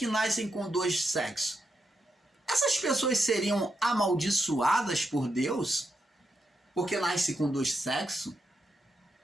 nascem com dois sexos, essas pessoas seriam amaldiçoadas por Deus? Porque nascem com dois sexos?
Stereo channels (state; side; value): normal; both; correlation 0.84